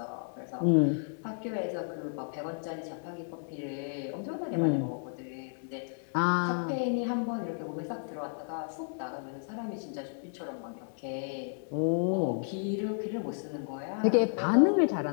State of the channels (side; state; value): right; silent; digital silence